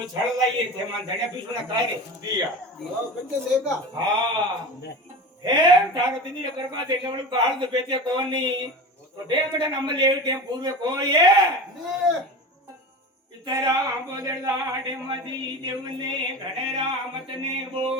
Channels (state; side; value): normal; both; correlation 0.31